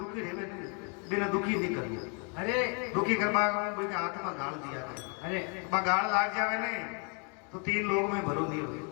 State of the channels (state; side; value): quieter; right; 36.8 dB